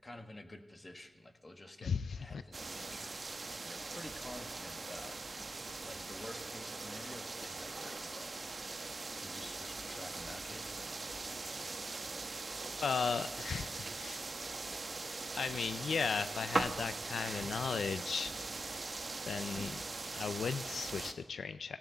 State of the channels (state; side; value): normal; both; correlation 0.87